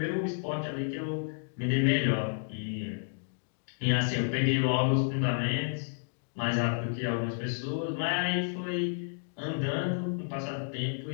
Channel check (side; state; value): right; silent; digital silence